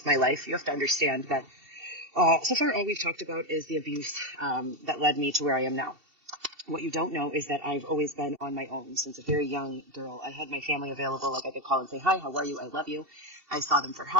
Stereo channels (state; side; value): late; left; 2.7 ms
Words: my life, you have to understand that so far all we've talked about is the abuse that led me to where I am now. What you don't know is that I've always been on my own since a very young girl. I had my family available, like I could call and say, hi, how are you? I love you. I saw them for